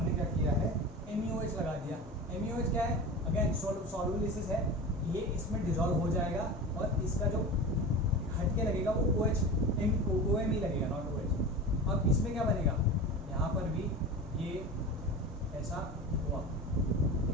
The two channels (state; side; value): normal; both; correlation 0.31